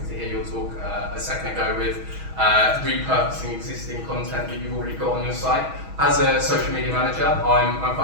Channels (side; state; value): left; late; 6.3 ms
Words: to hear your talk a second ago with repurposing existing content that you've already got on your site. As a social media manager, I'm